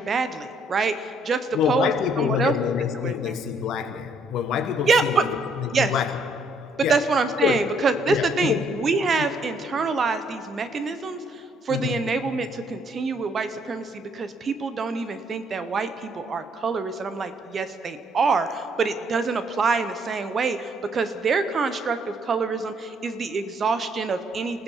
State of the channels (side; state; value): both; normal; correlation 0.68